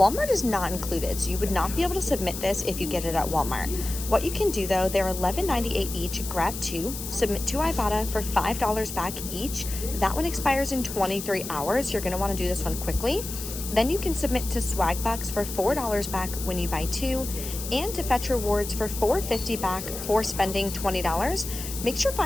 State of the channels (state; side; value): noise; left; hiss, 8 dB below the sound